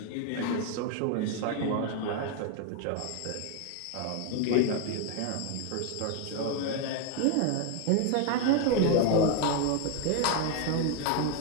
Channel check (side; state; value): both; different; correlation 0.01